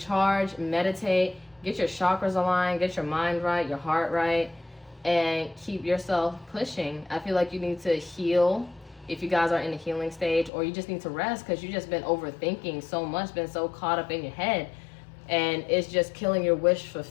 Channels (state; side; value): drops out; right; at 10.5 s